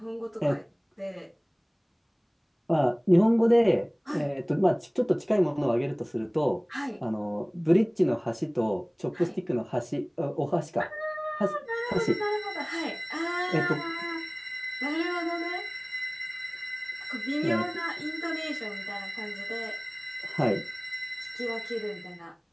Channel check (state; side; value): identical; both; correlation 1.00